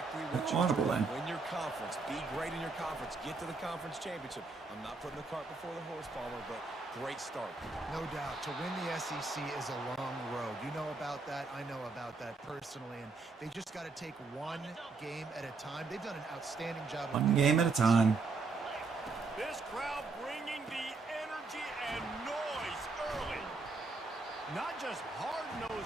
That's audible in. Win your conference. Be great in your conference. Let's get to the conference championship. I'm not putting the cart before the horse, Palmer, but great start. No doubt. To win the SEC is a long road. You know about that. I know about that personally. And they just got to take one game at a time. They've done an outstanding job. One game at a time. This crowd bringing the energy and noise early. Not just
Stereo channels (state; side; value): quieter; left; 3.9 dB